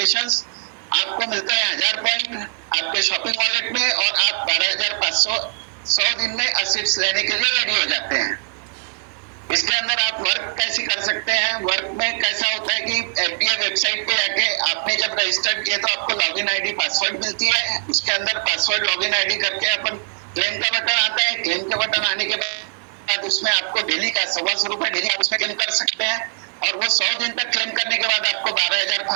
आपको मिलते हैं 1000 पॉइंट आपके शॉपिंग वॉलेट में, और आप 12,500 100 दिन में असिप्स लेने के लिए रेडी हो जाते हैं। इसके अंदर आप वर्क कैसे कर सकते हैं? वर्क में कैसा होता है कि एफडीए वेबसाइट पे जाके आपने जब रजिस्टर्ड किया तो आपको लॉगिन आईडी पासवर्ड मिलती है। उसके अंदर पासवर्ड लॉगिन आईडी करके अपन क्लेम का बटन आता है। क्लेम के बटन आने के बाद उसमें आपको डेली का 125 रुपए डेली आप उसमें क्लेम कर सकते हैं। और वो 100 दिन तक क्लेम करने के बाद आपको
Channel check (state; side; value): silent; left; 57 dB below the other